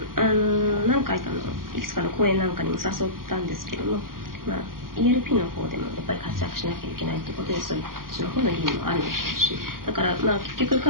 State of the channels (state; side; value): late; left; 0.91 ms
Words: 回かのいくつかの公演なんかにも誘ったんですけども、ELP の方でもやっぱり活躍しなきゃいけないということで、そういうその方の義務もあるでしょうし、だから結局